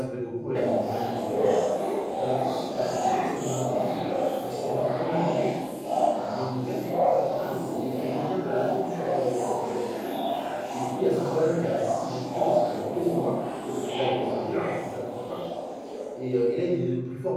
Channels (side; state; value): both; identical; correlation 1.00